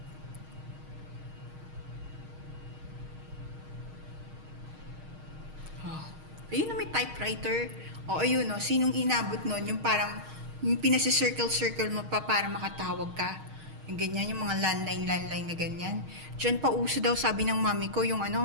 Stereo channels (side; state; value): left; late; 6.4 ms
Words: Oh. Ayun na, may typewriter. O, ayun, no, sinong inabot nun? Yung parang, yung pinasi-circle-circle mo pa para makatawag ka. Yung ganyan, yung mga landline na ganyan. Diyan pa uso daw, sabi ng mami ko, yung